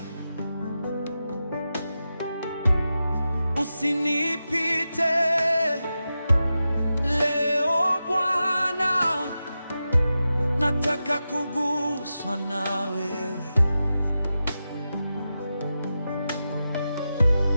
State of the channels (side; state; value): both; inverted; correlation -0.91